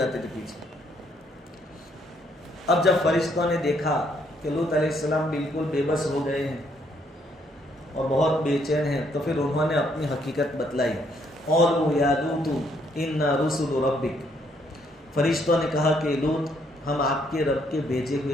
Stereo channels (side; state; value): both; normal; correlation 0.70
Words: تھے پیچھے. اب جب فرشتوں نے دیکھا کہ لوط علیہ السلام بالکل بے بس ہو گئے ہیں اور بہت بے چین ہیں, تو پھر انہوں نے اپنی حقیقت بتلائی. قالوا یا لوط انا رسل ربک, فرشتوں نے کہا کہ لوط ہم آپ کے رب کے بھیجے